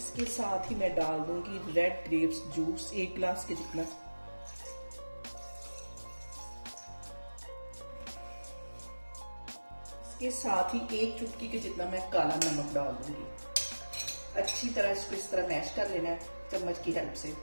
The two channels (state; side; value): inverted; both; correlation -1.00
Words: साथ ही मैं डाल दूंगी रेड ग्रेप्स जूस 1 गिलास के जितना। इसके साथ ही 1 चुटकी के जितना मैं काला नमक डाल दूंगी। अच्छी तरह इसको इस तरह मैश कर लेना है चम्मच की हेल्प से।